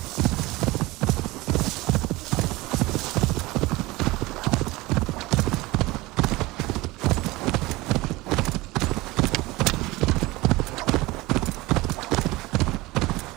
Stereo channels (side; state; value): left; quieter; 20.8 dB